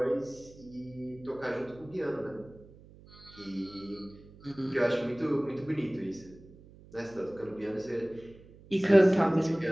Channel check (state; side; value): noise; right; hum, 22 dB below the sound